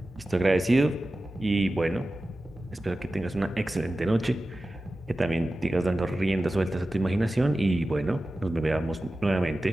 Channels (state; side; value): normal; both; correlation 0.95